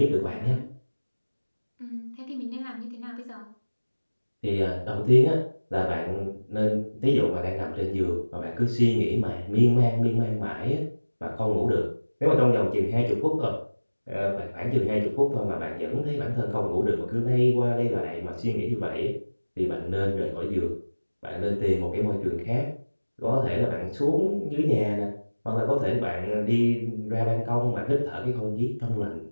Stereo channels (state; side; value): inverted; both; correlation -1.00